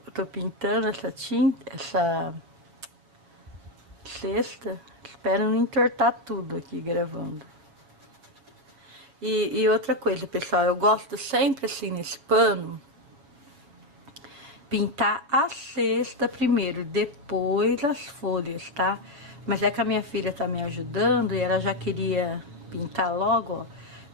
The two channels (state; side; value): late; left; 7.2 ms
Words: tô pintando essa tinta, essa cesta. Espero não entortar tudo aqui gravando. E outra coisa, pessoal, eu gosto sempre assim nesse pano, pintar a cesta primeiro, depois as folhas, tá? Mas é que a minha filha tá me ajudando e ela já queria pintar logo, ó.